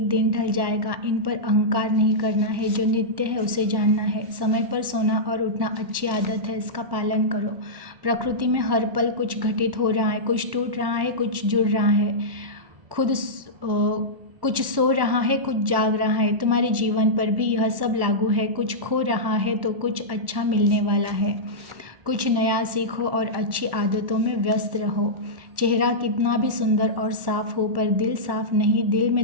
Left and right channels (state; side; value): late; left; 1.1 ms